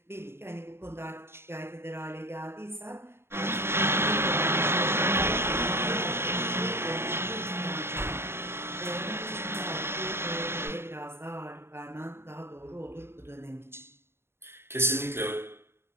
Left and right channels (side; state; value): left; late; 0.12 ms